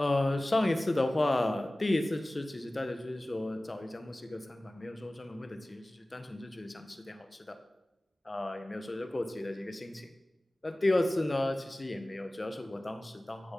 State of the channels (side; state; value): both; normal; correlation 0.98